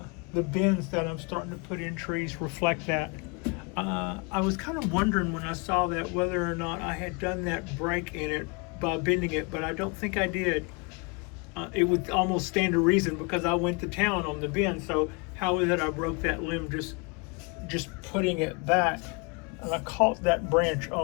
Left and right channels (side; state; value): right; quieter; 30.9 dB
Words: bins that I'm starting to put in trees reflect that. I was kind of wondering when I saw that whether or not I had done that break in it by bending it, but I don't think I did. It would almost stand to reason because I went to town on the bend. So how is it I broke that limb just putting it back? And I caught that branch